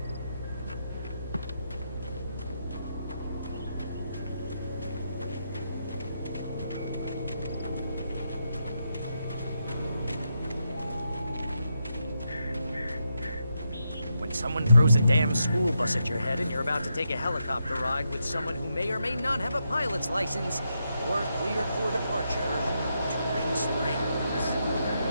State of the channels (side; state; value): both; inverted; correlation -0.83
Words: When someone throws a damn school bus at your head and you're about to take a helicopter ride with someone who may or may not have a pilot's license, or cleared for departure to Ring Springs.